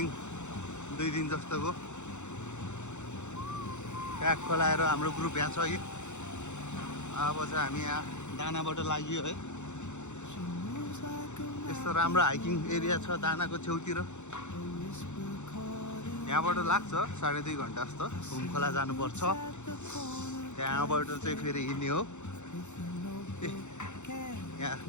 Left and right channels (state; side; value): late; right; 0.83 ms